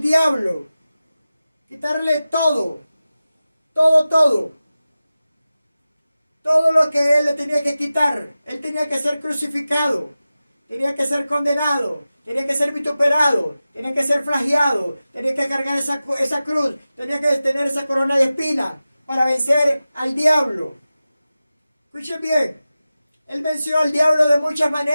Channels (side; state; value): both; inverted; correlation -0.95